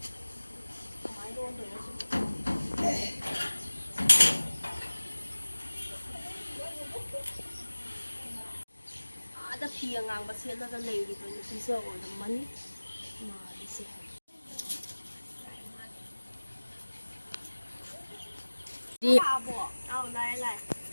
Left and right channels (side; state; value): both; inverted; correlation -1.00